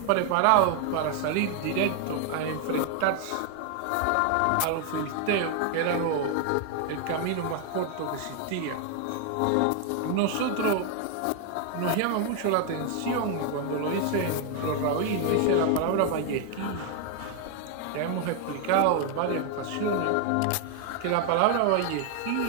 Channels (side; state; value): both; different; correlation 0.00